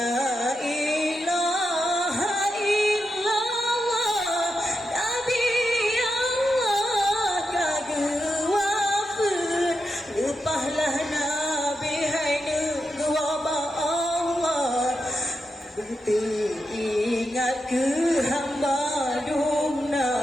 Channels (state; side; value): normal; both; correlation 0.86